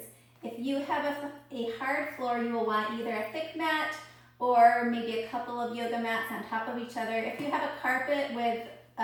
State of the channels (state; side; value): identical; both; correlation 1.00